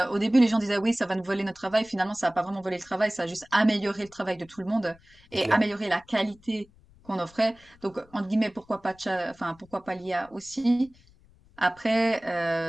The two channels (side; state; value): left; noise; rumble, 28 dB below the sound